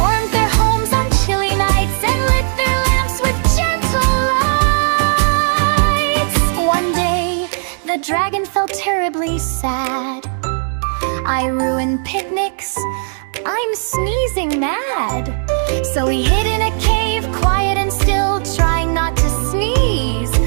their homes on chilly nights and lit their lamps with gentle lights. One day, the dragon felt terribly sad. I ruined picnics, I'm sneezing mad. So he hid in a cave, quiet and still, trying not to sneeze,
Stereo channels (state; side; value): silent; left; digital silence